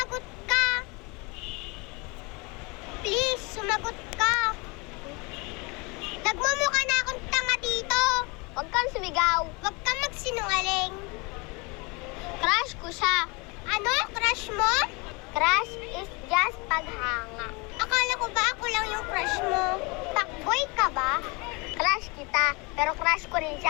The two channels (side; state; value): right; quieter; 28.4 dB